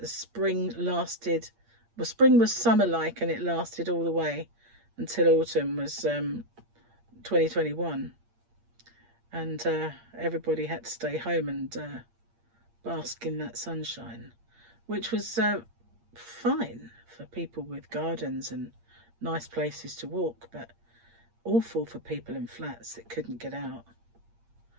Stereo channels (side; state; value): left; late; 8.6 ms